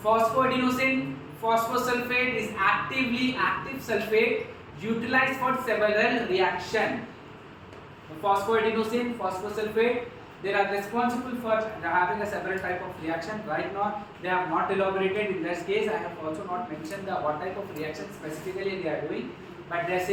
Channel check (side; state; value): both; identical; correlation 1.00